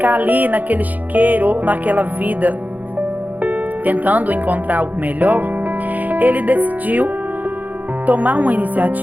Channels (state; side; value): late; left; 0.080 ms